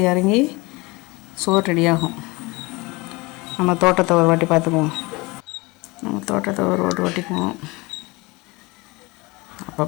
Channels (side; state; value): right; quieter; 24.2 dB